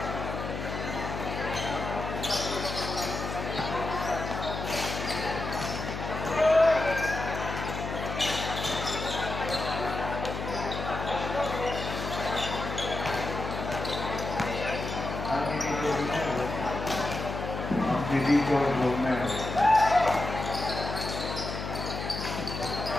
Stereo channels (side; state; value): left; noise; hum, 6 dB below the sound